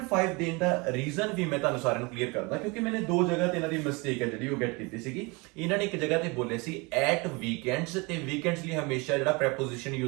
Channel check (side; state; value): left; quieter; 27.2 dB